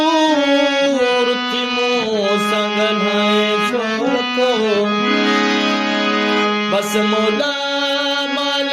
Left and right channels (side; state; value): both; identical; correlation 1.00